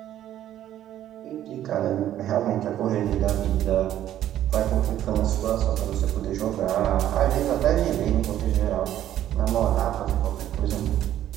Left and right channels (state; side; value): quieter; left; 12.0 dB